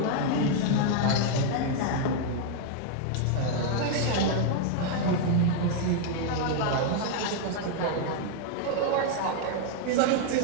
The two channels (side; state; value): both; different; correlation 0.00